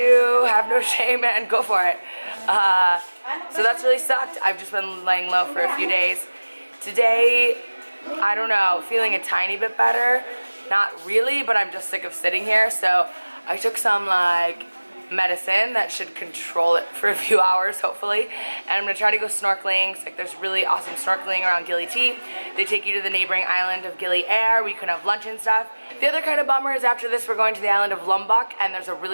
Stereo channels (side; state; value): both; inverted; correlation -1.00